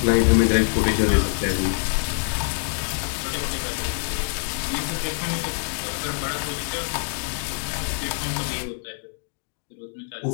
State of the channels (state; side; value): silent; right; 62 dB below the other